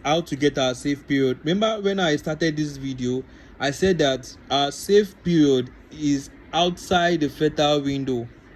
how to get our safe period. Remember when I started this video, I said that our safe period is outside the fertile window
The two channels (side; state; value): both; identical; correlation 1.00